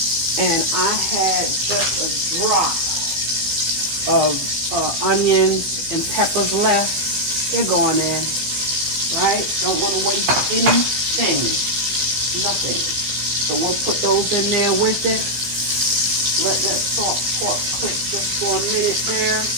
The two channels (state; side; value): late; left; 15 ms